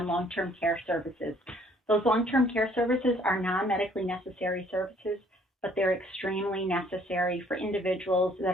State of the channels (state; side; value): normal; both; correlation 0.61